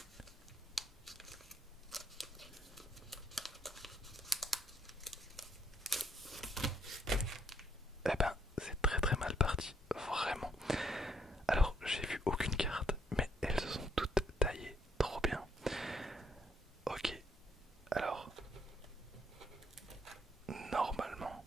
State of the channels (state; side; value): normal; both; correlation 0.70